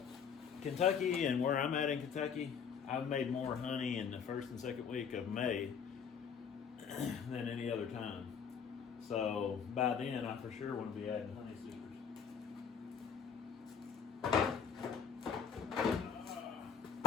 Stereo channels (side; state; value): right; quieter; 6.9 dB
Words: Kentucky, and where I'm at in Kentucky, I've made more honey in the first and second week of May than any other time. So by then, I for sure want to be adding honey supers.